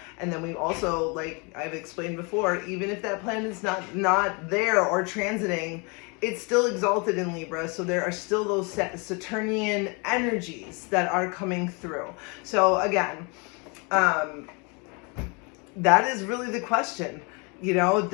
And then we also, like I've explained before, even if that planet is not there or transiting, it's still exalted in Libra. So there are still those Saturnian energies that are coming through. So again, that is really the question. You know,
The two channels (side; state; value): right; quieter; 31.7 dB